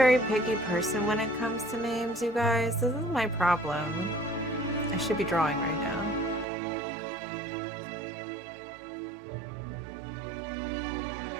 picky person when it comes to names, you guys. This is my problem. I should be drawing right now.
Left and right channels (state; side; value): drops out; left; at 6.5 s